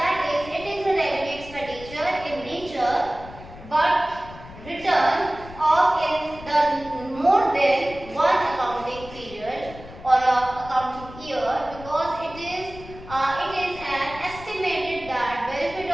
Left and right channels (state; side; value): noise; left; rumble, 16 dB below the sound